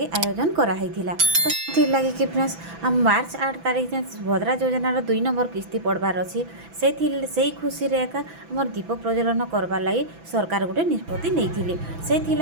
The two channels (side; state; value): left; late; 6.0 ms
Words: आयोजन करा हैथिला। तो थी लगी कि फ्रेंड्स हम मार्च 8 तारीख सुभद्रा योजनार 2 नंबर किस्ती पड़बार अच्छी से खुशी रे एका हमर दीप प्रज्वलन करबार लगी सरकार गोटे निष्पत्ति नहीं से